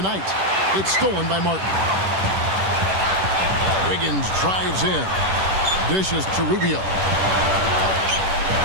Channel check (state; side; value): late; left; 10 ms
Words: It's stolen by Martin. Wiggins drives in. Dishes to Rubio.